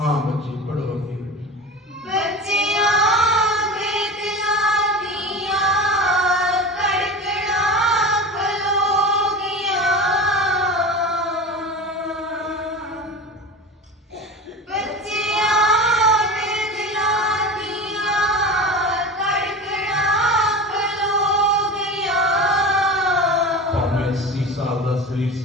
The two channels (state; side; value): normal; both; correlation 0.31